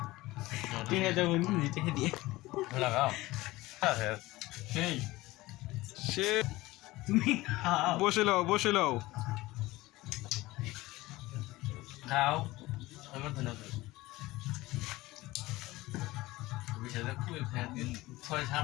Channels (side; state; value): right; quieter; 19.1 dB